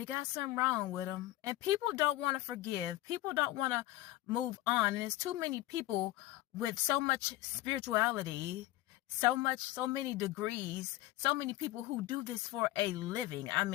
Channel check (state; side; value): quieter; right; 16.5 dB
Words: got something wrong with them. And people don't want to forgive. People don't want to move on. And there's too many people with so much spirituality, so many degrees, so many people who do this for a living. I